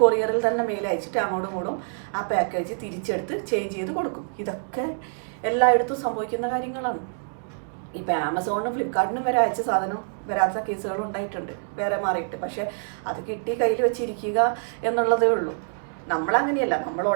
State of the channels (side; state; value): left; silent; 61 dB below the other